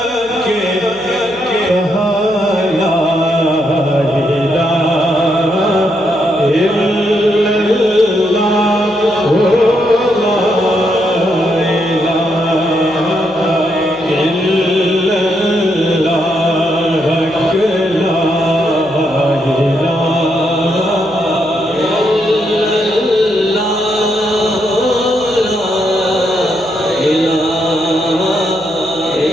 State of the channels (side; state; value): right; noise; hum, 25 dB below the sound